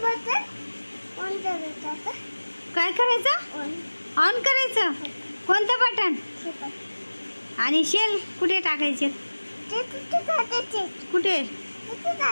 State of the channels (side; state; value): both; inverted; correlation -1.00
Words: काय करायचं? ऑन करायचं. कोणतं बटन? आणि शेल कुठे टाकायचे? कुठे?